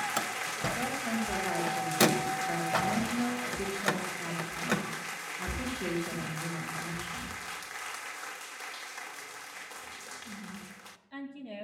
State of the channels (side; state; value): both; identical; correlation 1.00